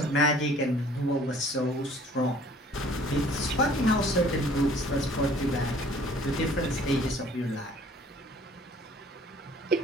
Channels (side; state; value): both; normal; correlation 0.54